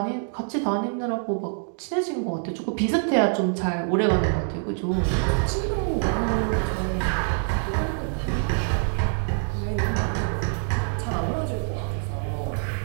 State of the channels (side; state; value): left; silent; 61 dB below the other